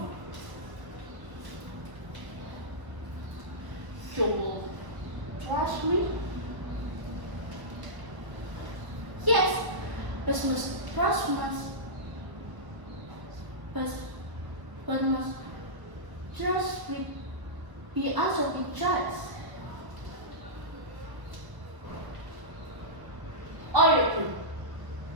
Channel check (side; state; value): left; late; 1.0 ms